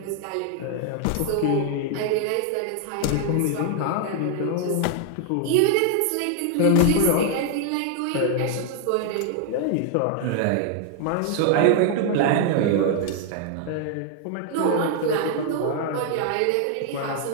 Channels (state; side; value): different; both; correlation 0.00